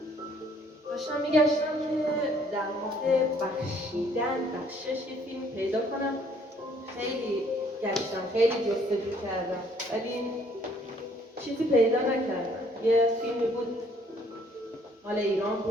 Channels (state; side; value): normal; both; correlation 0.62